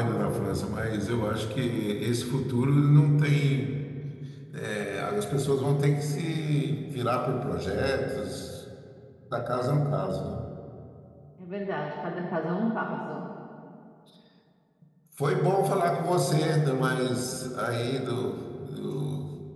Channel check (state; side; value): identical; both; correlation 1.00